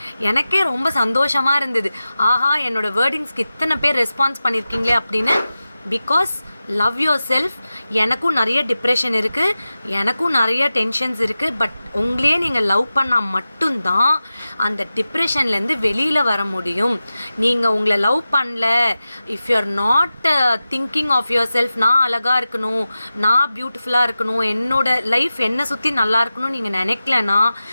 எனக்கே ரொம்ப சந்தோஷமாக இருந்தது. ஆஹா, என்னோட வேர்டிங்ஸ்க்கு இத்தனை பேர் ரெஸ்பான்ஸ் பண்ணியிருக்கீங்களே அப்படின்னு. Because love your self. எனக்கும் நிறைய டிப்ரெஷன் இருக்குது, எனக்கும் நிறைய டென்ஷன்ஸ் இருக்குது. பட் உங்களையே நீங்கள் லவ் பண்ணால் மட்டும்தான் அந்த டிப்ரெஷன்லேருந்து வெளியில் வர முடியும். நீங்கள் உங்களை லவ் பண்ணல, if you are not thinking of yourself, நான் அழகாக இருக்கணும், நான் பியூட்டிஃபுல்லாக இருக்கணும், என்னோட லைஃப் என்னை சுற்றி நல்லா இருக்கணும்னு நீங்கள் நினைக்கலன்னா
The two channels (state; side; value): inverted; both; correlation -0.94